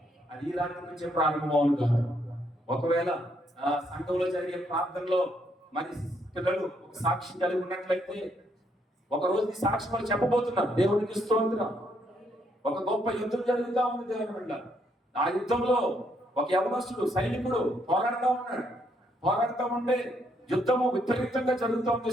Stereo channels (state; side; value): normal; both; correlation 0.73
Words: అది ఈ రాత్రి నుంచే ప్రారంభం అవును గాక. ఒకవేళ సంఘంలో జరిగే ప్రార్థనలో మరి పిల్లలు ఒక సాక్ష్యం కలిగి ఉన్నట్లయితే ఒక రోజు ఈ సాక్ష్యం వాళ్ళు చెప్పబోతున్నారు. దేవునికి స్తోత్రం. ఒక గొప్ప యుద్ధం జరుగుతూ ఉంది దేవుని బిడ్డ. ఆ యుద్ధంలో ఒక యవనస్తుడు సైనికుడు పోరాడుతూ ఉంటే యుద్ధము విపరీతంగా జరుగుతూ ఉంది,